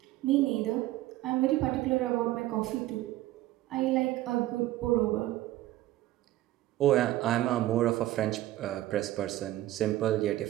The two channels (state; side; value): quieter; left; 15.6 dB